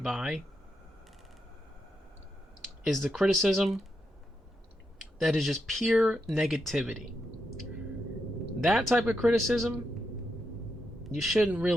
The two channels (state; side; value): normal; both; correlation 0.83